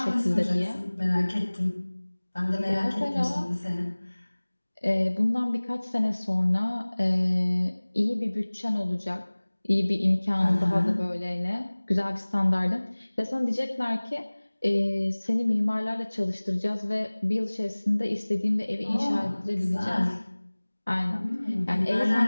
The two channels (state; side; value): inverted; both; correlation -1.00